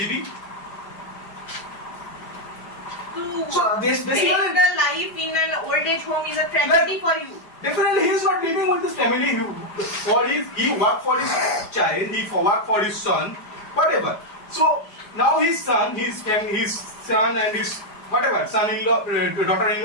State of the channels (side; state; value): right; late; 5.0 ms